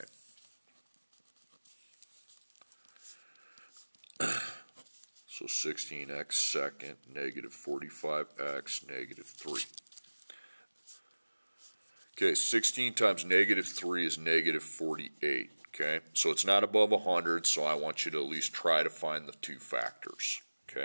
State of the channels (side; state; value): both; inverted; correlation -1.00